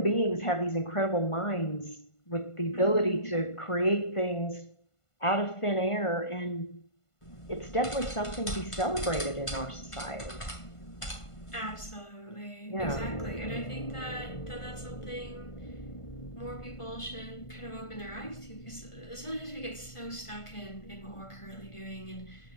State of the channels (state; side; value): late; right; 1.5 ms